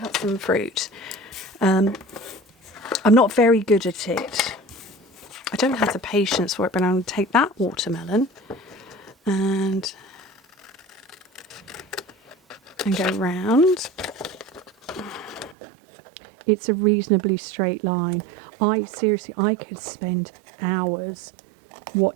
some fruit. I'm not very good at it. I don't have the patience for it, but I'm going to take that watermelon and go round. It's a reasonably straight line. I could spend hours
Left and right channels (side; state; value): left; drops out; at 15.6 s